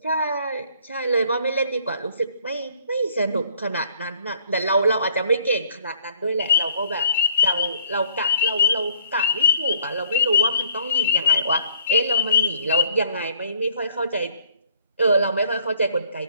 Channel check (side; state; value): both; inverted; correlation -0.61